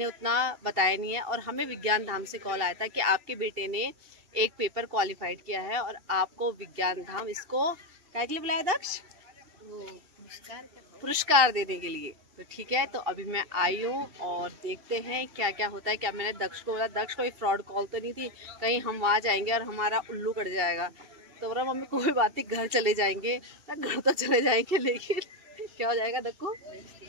उतना बताया नहीं है। और हमें विज्ञान धाम से कॉल आया था कि आपके बेटे ने एक पेपर क्वालिफाइड किया है और आपको विज्ञान धाम इसको क्या के लिए बुलाया दक्ष? पुरस्कार देने के लिए। तो ठीक है, तो अभी मैं आई हूँ और देखते हैं क्या क्या होता है। क्या मैंने दक्ष को बोला, दक्ष कोई फ्रॉड कॉल तो नहीं थी, कहीं हम वहाँ जाएंगे और हमारा उल्लू कट जाएगा। तो बोला मम्मी कोई बात नहीं, घर चले जाएंगे। घर तो चले जाएंगे, लेकिन क्या हो जाएगा दक्कू?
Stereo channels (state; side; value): late; left; 2.7 ms